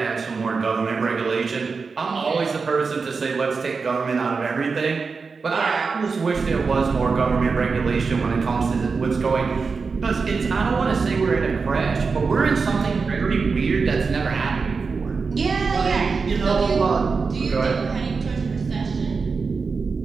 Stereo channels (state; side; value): quieter; left; 4.8 dB